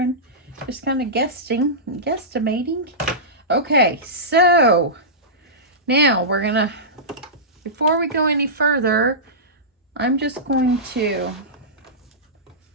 just kind of guesstimating. Okay, so now we're going to, before we go any further, I'm just going to,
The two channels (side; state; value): both; normal; correlation -0.17